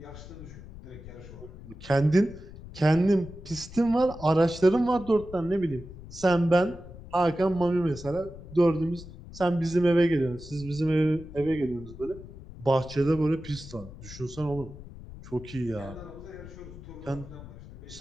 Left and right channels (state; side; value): noise; left; rumble, 15 dB below the sound